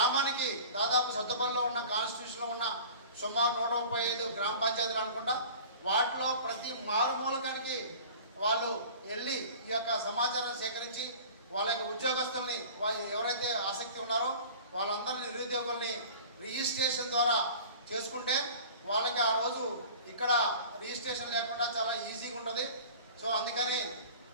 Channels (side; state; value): both; inverted; correlation -0.42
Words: దాదాపు సొంతపల్లిలో ఉన్న కాన్స్టిట్యూషన్లో ఉన్న సుమారు 135 గ్రామ పంచాయతీలు అనుకుంటా వాటిలో ప్రతి మారుమూలకానికి వాళ్ళు వెళ్ళి ఈ యొక్క సమాచారం సేకరించి వాళ్ళ యొక్క ఉద్యోగస్తుల్ని ఎవరైతే ఆసక్తి ఉన్నారో వాళ్ళందరినీ నిరుద్యోగుల్ని రిజిస్ట్రేషన్ ద్వారా చేసుకుంటే వాళ్ళకి ఆ రోజు ఇక్కడ రిజిస్ట్రేషన్ లేకుండా చాలా ఈజీగా ఉంటుంది. సో అందుకని